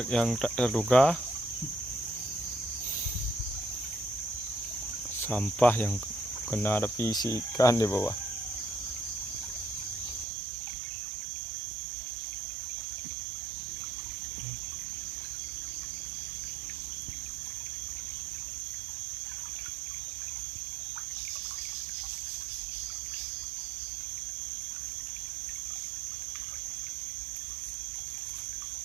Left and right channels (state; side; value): drops out; left; at 10.2 s